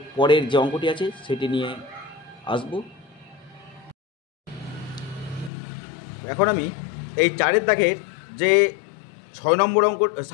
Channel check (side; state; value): right; drops out; at 5.5 s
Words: পরের যে অঙ্কটি আছে সেটি নিয়ে আসব। এখন আমি এই 4 দাগের যে 7 নম্বর